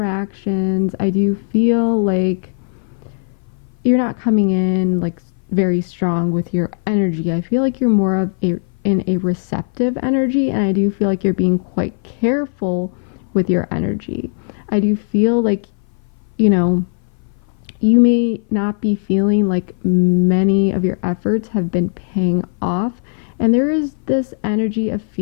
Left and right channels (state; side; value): silent; right; 60 dB below the other